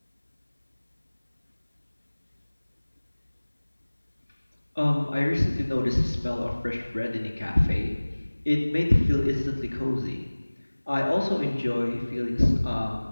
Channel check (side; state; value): both; inverted; correlation -1.00